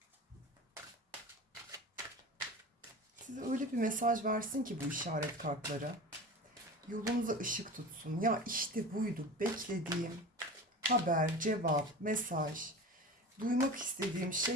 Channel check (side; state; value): both; normal; correlation 0.33